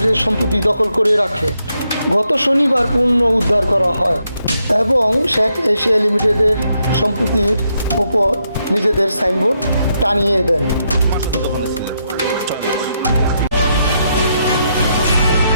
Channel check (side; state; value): both; inverted; correlation -0.80